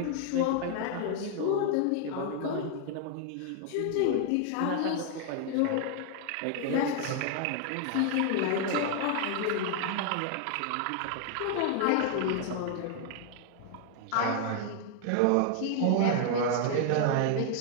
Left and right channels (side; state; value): both; different; correlation 0.00